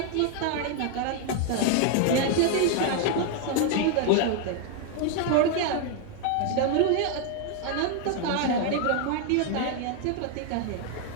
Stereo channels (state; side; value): different; both; correlation 0.00